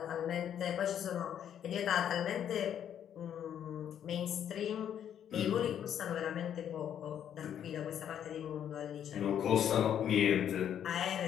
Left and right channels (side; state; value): right; quieter; 9.6 dB